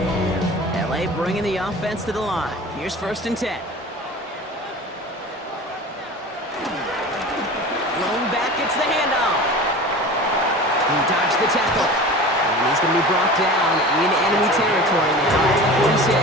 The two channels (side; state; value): both; normal; correlation 0.36